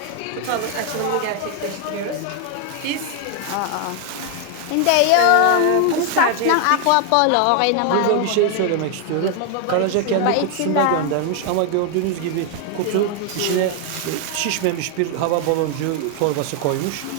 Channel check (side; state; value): both; different; correlation 0.00